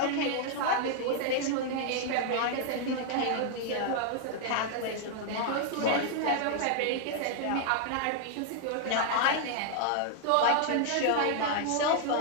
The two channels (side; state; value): both; different; correlation -0.01